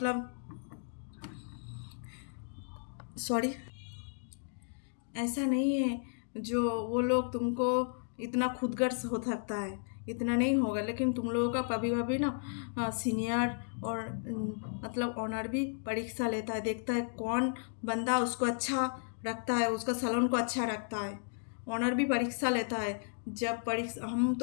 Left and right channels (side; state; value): right; silent; digital silence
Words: सॉरी ऐसा नहीं है जो वो लोग तुमको इतना खुदगर्ज हो सकता है, इतना नहीं होगा। लेकिन तुम लोगों का कभी कभी ना सीनियर और मतलब ऑनर भी परीक्षा लेता है, देखता है कौन बंदा उसको अच्छा रखता है, उसका सैलून को अच्छा रखता है। ऑनर भी परीक्षा लेता है। जब परीक्षा, हम